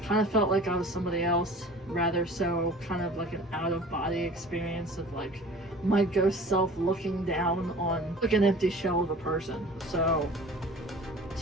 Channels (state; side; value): normal; both; correlation 0.43